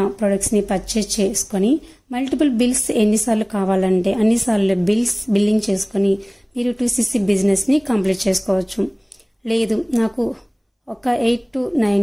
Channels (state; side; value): identical; both; correlation 1.00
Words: ప్రొడక్ట్స్ని పర్చేస్ చేసుకొని మల్టిపుల్ బిల్స్ ఎన్నిసార్లు కావాలంటే అన్నిసార్లు బిల్లింగ్ చేసుకొని మీరు 2cc బిజినెస్ని కంప్లీట్ చేసుకోవచ్చు. లేదు నాకు ఒక 8,000 to